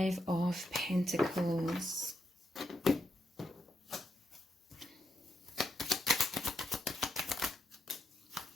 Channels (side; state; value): both; normal; correlation 0.81